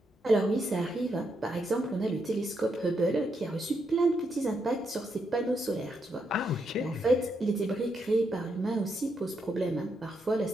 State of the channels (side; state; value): both; normal; correlation 0.80